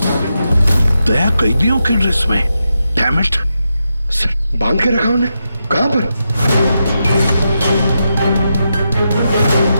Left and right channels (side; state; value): both; inverted; correlation -0.86